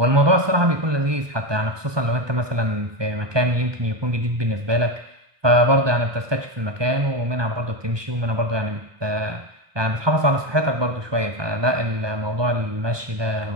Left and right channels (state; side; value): late; left; 1.2 ms